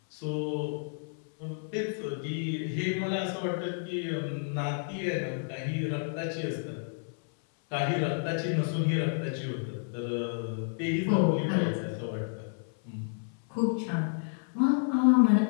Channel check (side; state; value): right; silent; 58 dB below the other